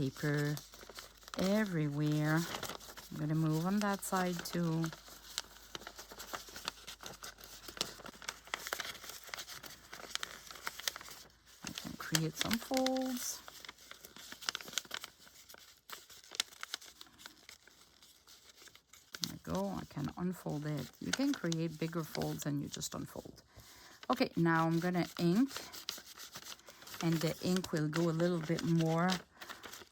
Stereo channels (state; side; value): identical; both; correlation 1.00